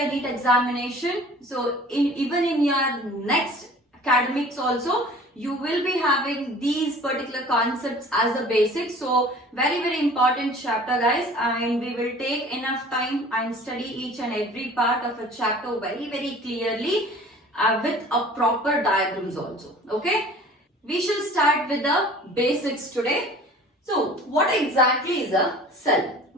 NEET examination. So even in your next academics also, you will be having these particular concepts as the basics. So very important chapter, guys, and we will take enough time and study each and every part of a chapter very clearly with a proper diagrams also. Okay, we shall start with the basics today. So what exactly is a cell?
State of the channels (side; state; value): both; normal; correlation 0.46